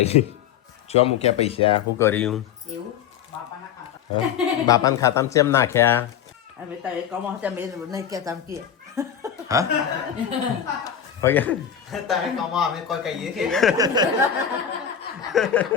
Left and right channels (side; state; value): right; quieter; 8.8 dB